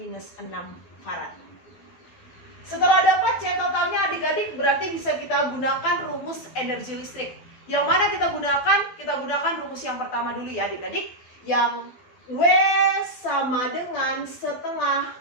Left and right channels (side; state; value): right; late; 12 ms